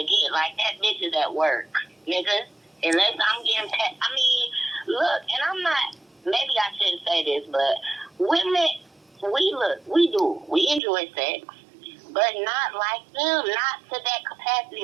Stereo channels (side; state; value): left; drops out; at 10.8 s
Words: Like, that bitch is at work, nigga. Unless I'm getting paid. I mean, look, and I'm not, maybe I shouldn't say this, but women, we enjoy sex, but not like them, not to that